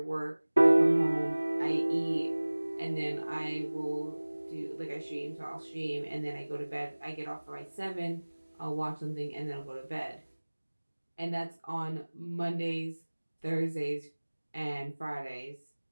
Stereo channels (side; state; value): both; inverted; correlation -1.00